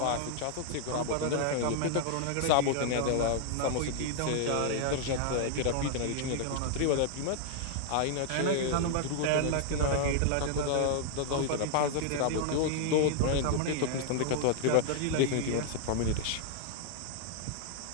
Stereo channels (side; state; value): both; different; correlation 0.00